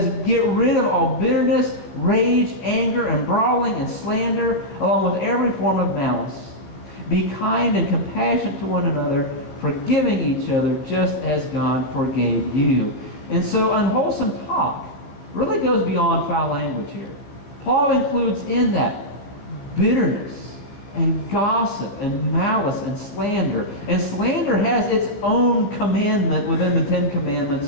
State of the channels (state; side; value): late; right; 15 ms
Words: get rid of all bitterness, rage, anger, and brawling, and slander, along with every form of malice. Be kind and compassionate to one another, forgiving each other just as God forgave you. And so unwholesome talk really goes beyond foul language here. Paul includes in that bitterness and gossip and malice and slander. And slander has its own commandment within the Ten Commandments,